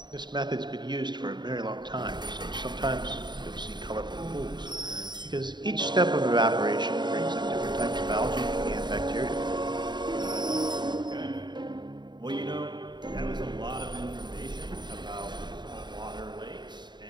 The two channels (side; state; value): left; late; 0.21 ms